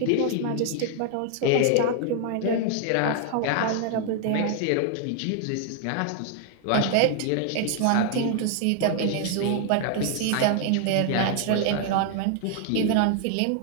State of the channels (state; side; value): different; both; correlation 0.00